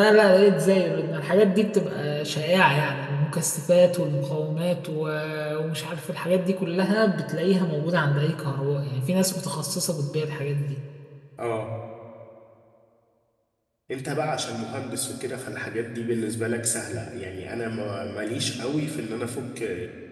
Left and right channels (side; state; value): both; identical; correlation 1.00